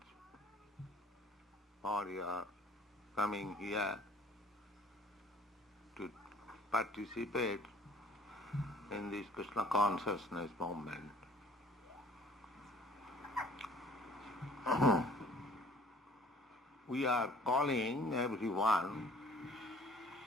for your coming here to participate in this Krishna consciousness movement. We are calling everyone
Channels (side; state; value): both; normal; correlation 0.53